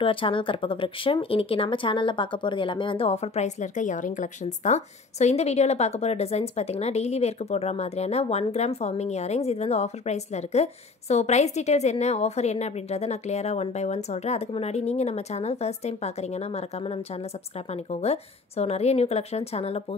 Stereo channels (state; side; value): quieter; right; 4.0 dB